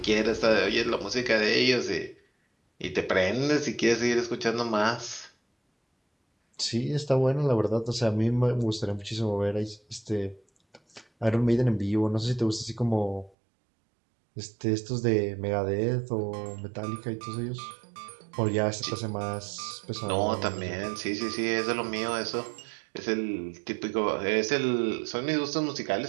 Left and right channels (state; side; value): drops out; left; at 13.4 s